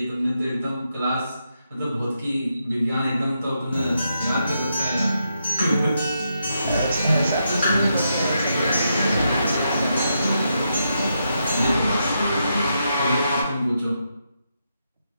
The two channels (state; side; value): inverted; both; correlation -0.82